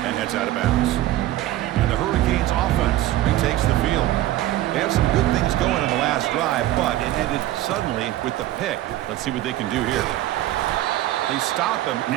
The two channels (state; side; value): quieter; left; 14.8 dB